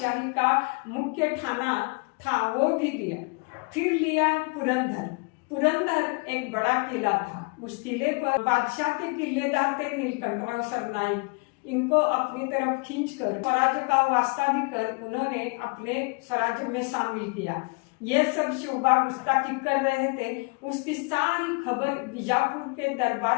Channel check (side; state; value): right; quieter; 32.3 dB